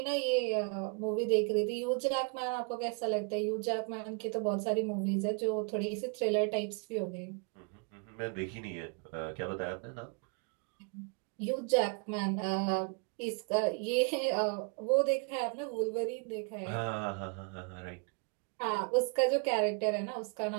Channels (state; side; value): quieter; left; 35.5 dB